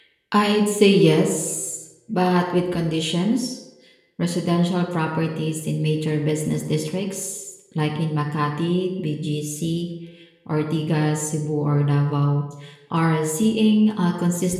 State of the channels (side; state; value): both; identical; correlation 1.00